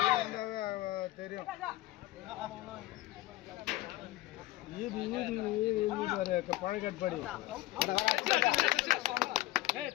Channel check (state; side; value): quieter; right; 16.9 dB